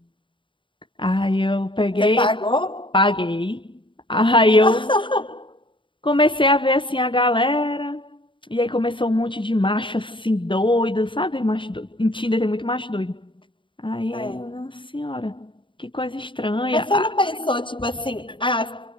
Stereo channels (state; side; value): late; right; 0.24 ms